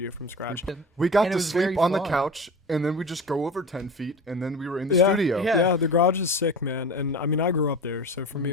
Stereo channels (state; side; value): normal; both; correlation 0.31